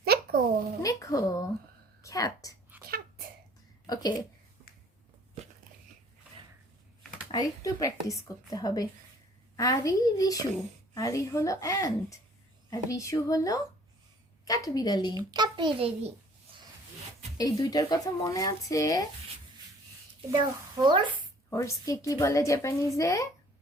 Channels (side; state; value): both; normal; correlation 0.55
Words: Neko. নেকো। ক্যাট। Cat. ওকে, আর একটু প্র্যাকটিস করতে হবে। আরি রিশু। আরি হলো অ্যান্ট আর রিশু হলো কাঠবিড়ালি। Capillary. এই দুইটার কথা মনে আছে? The horse. হর্সকে কি বলে জাপানিজে?